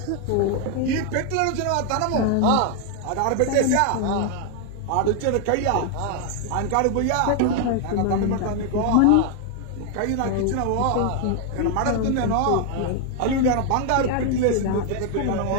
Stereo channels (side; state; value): both; different; correlation 0.00